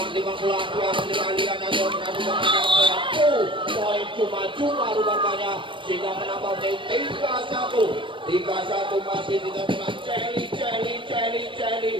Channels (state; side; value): late; left; 0.24 ms